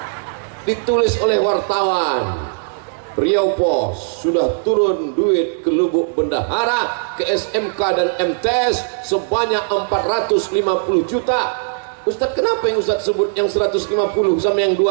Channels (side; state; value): left; silent; digital silence